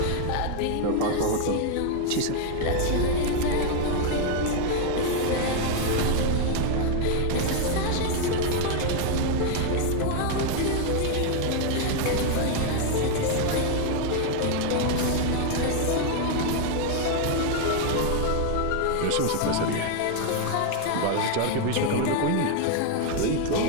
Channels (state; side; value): different; both; correlation 0.00